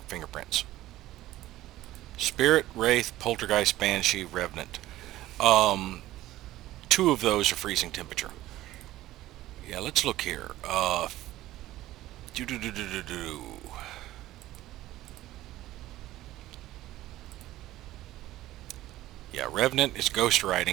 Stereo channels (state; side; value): quieter; left; 15.4 dB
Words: fingerprints. Spirit, Wraith, Poltergeist, Banshee, Revenant. 2 of those are freezing temperature. Yeah, let's look here. Yeah, Revenant is ghost